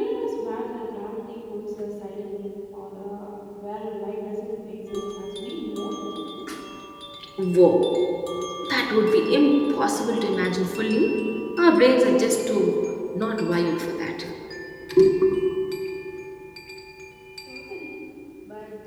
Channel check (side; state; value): both; identical; correlation 1.00